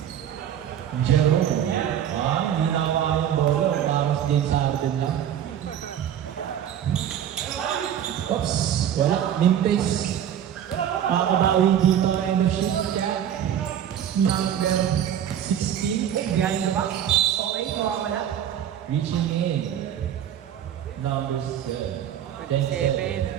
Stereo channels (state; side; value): quieter; left; 10.0 dB